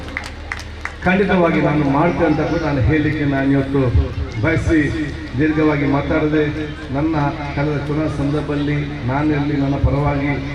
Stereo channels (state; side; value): identical; both; correlation 1.00